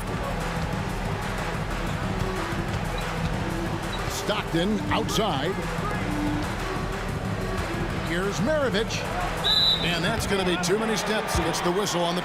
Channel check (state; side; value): identical; both; correlation 1.00